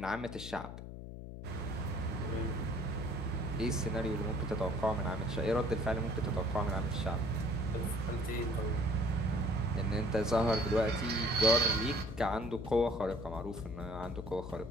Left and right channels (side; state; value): left; noise; hum, 10 dB below the sound